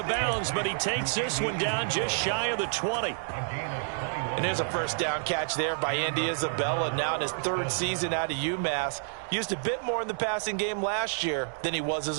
bounds, but he takes this one down just shy of the 20. And there's a first down catch there by Andy Isabella, now in his 3rd season out of UMass. Used a bit more in the passing game last year than he was as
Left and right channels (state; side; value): silent; left; digital silence